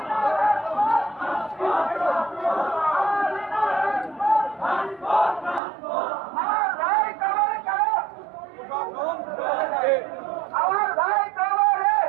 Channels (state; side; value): drops out; left; at 5.6 s